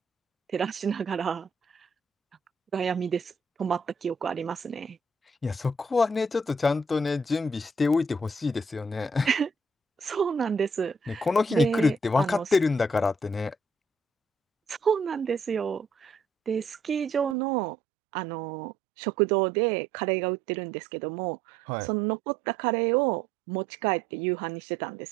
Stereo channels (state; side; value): drops out; left; at 17.4 s